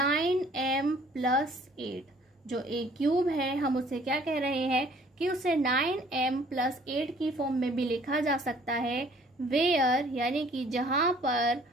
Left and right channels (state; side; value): normal; both; correlation 0.57